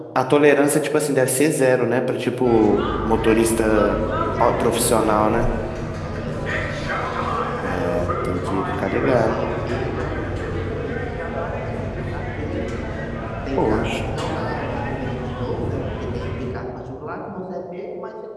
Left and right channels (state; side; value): identical; both; correlation 1.00